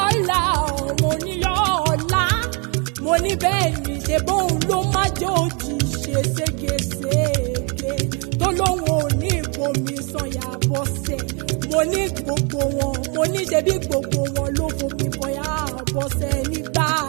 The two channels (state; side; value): quieter; left; 33.5 dB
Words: Mo ní bẹ́ẹ̀ ni ṣe bóun ló má jẹ́ òjì ṣe ségesège tó lóun ò ní ìbomi sànyà bọ́sẹ̀. Mo ní gbogbo wọn, mo ní ṣe bí gbogbo wọn ló fomi bọ́yá bọ́sẹ̀